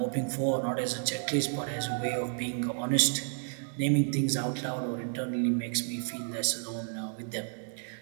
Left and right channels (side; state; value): left; silent; 57 dB below the other